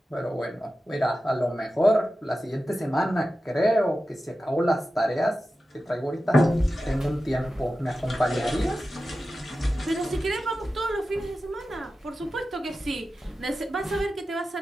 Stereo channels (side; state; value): both; normal; correlation 0.93